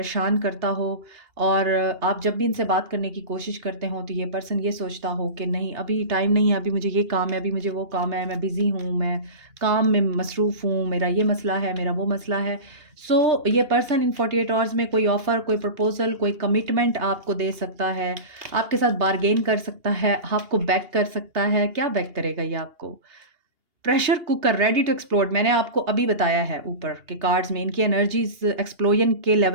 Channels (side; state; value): left; late; 2.8 ms